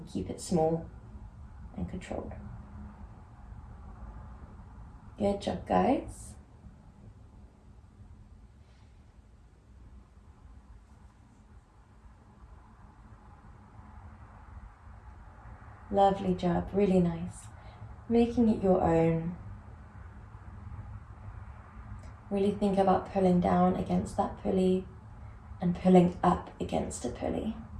keep it small and controlled. Good job, guys. Lovely job, really nice. Making it your own. Really think about pulling down against that pulley and pulling up against a pulley.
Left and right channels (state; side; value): identical; both; correlation 1.00